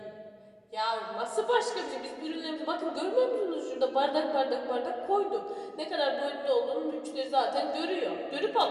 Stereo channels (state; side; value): identical; both; correlation 1.00